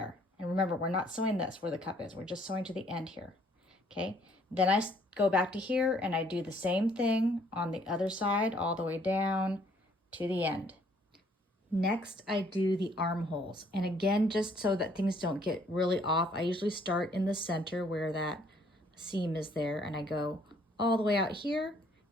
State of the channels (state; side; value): normal; both; correlation 0.63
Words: And remember, we're not sewing this where the cup is. We're just sewing to the end here, okay? Then I go back to here, and I do the same thing on the other side, all the way down to the end. Next, I do the armholes. And again, just so that things don't get really off, I usually start in the center where that seam is there, and I go all the way out here,